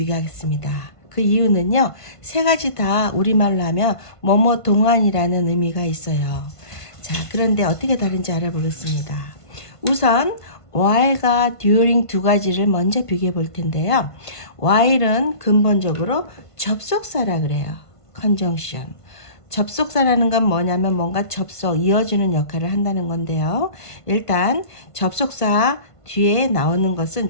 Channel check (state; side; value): late; right; 1.5 ms